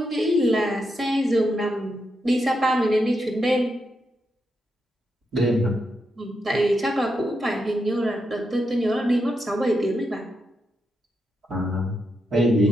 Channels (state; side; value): normal; both; correlation 0.84